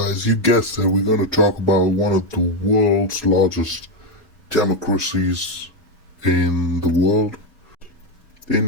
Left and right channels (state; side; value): normal; both; correlation 0.07